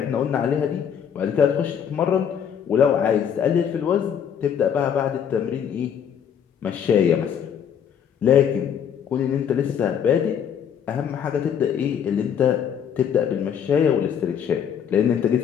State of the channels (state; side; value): quieter; right; 8.3 dB